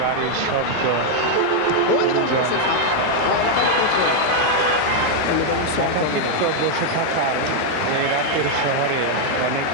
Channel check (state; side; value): different; both; correlation 0.00